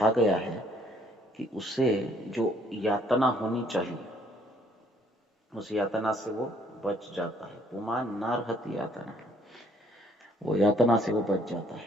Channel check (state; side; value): normal; both; correlation 0.63